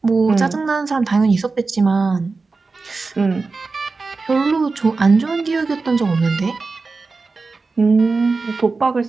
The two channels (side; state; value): left; quieter; 4.0 dB